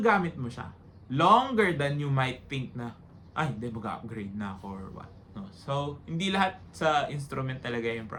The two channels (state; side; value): identical; both; correlation 1.00